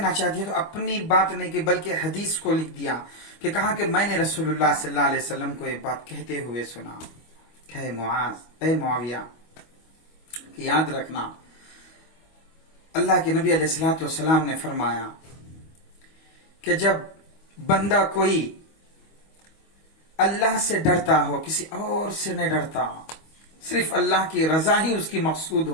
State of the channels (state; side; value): late; right; 25 ms